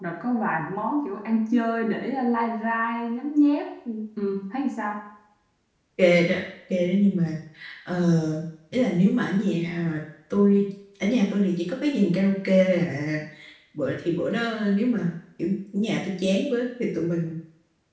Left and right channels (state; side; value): identical; both; correlation 1.00